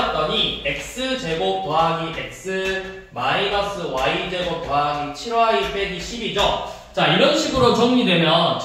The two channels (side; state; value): both; identical; correlation 1.00